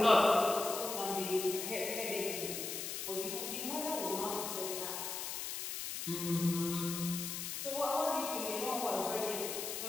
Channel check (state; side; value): noise; left; hiss, 4 dB below the sound